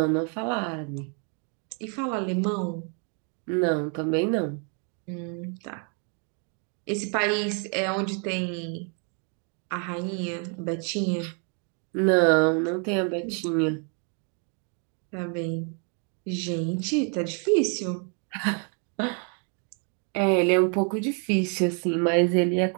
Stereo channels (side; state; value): left; quieter; 39.7 dB